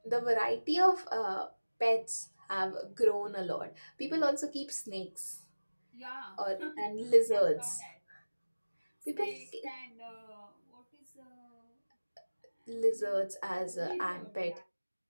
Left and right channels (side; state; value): both; inverted; correlation -1.00